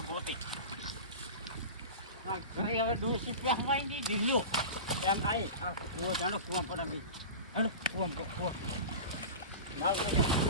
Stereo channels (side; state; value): both; inverted; correlation -0.30